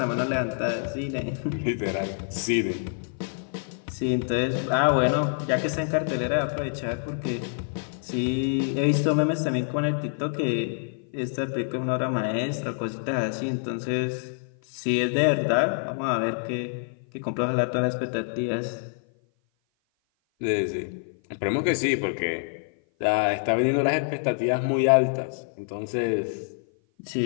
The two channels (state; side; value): silent; right; 56 dB below the other